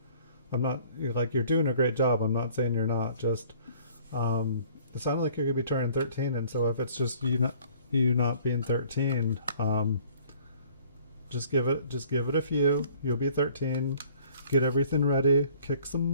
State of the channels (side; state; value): both; inverted; correlation -0.54